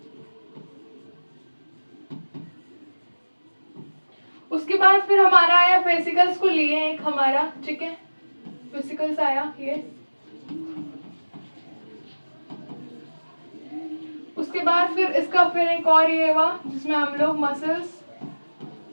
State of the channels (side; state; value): both; inverted; correlation -1.00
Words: उसके बाद फिर हमारा आया फेसिकल्स को लिए एक हमारा, ठीक है, फेसिकल्स आया ये। उसके बाद फिर इसका फिर एक और ये हुआ जिसमें हम लोग